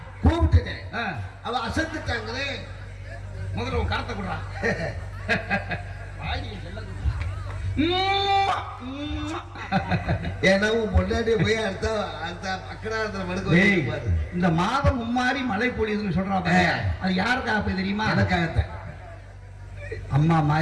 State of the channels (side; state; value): both; identical; correlation 1.00